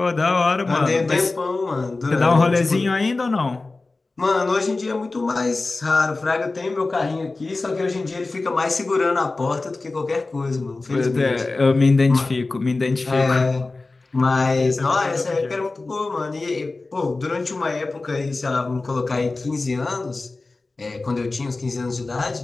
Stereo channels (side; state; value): right; quieter; 3.4 dB